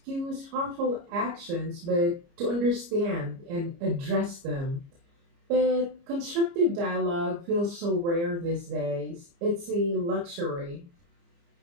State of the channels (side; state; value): left; late; 29 ms